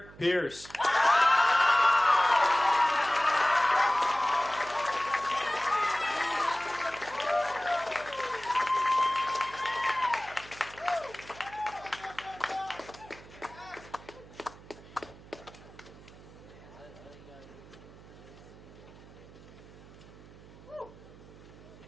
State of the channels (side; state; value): right; noise; hum, 20 dB below the sound